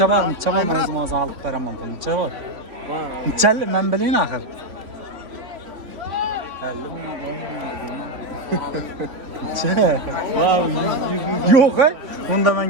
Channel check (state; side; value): late; left; 3.5 ms